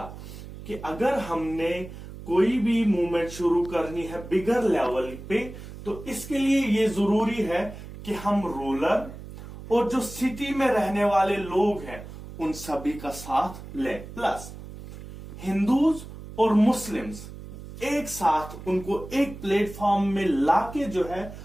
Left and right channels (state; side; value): noise; right; hum, 13 dB below the sound